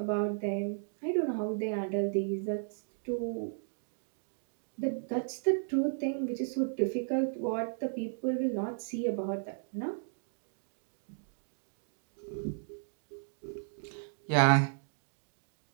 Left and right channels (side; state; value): left; silent; digital silence